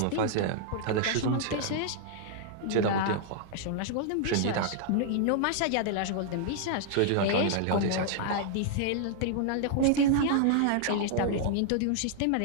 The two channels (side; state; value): both; different; correlation -0.01